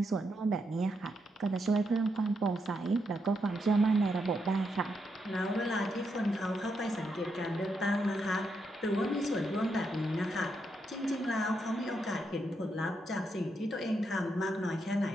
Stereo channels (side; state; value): both; normal; correlation 0.81